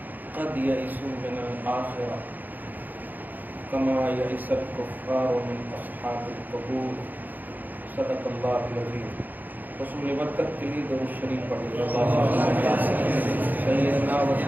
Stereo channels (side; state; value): left; late; 0.085 ms